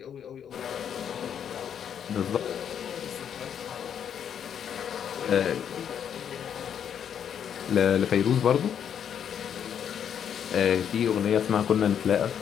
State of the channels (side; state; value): right; quieter; 8.6 dB